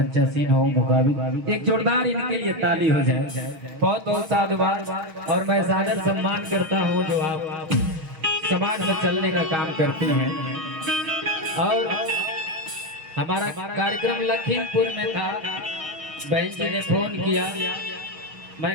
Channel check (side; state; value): left; late; 6.4 ms